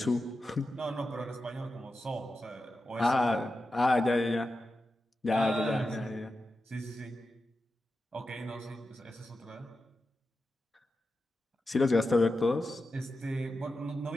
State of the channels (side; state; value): both; normal; correlation 0.91